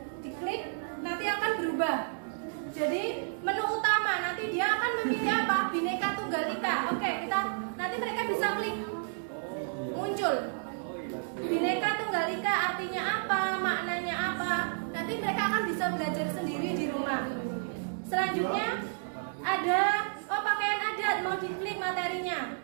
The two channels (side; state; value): left; silent; digital silence